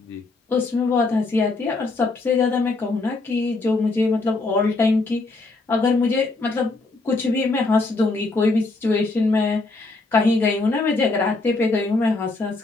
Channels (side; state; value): right; quieter; 3.4 dB